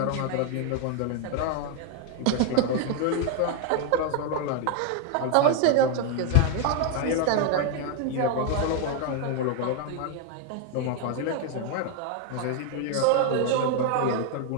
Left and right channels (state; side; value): different; both; correlation 0.00